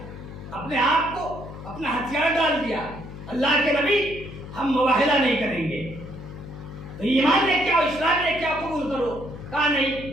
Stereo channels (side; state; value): left; noise; hum, 12 dB below the sound